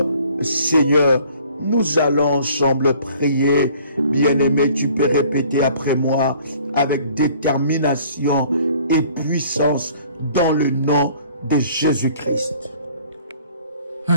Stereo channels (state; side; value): inverted; both; correlation -0.54